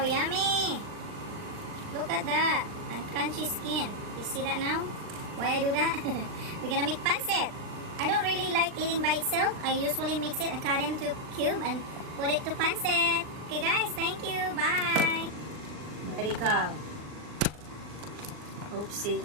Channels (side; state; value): left; late; 39 ms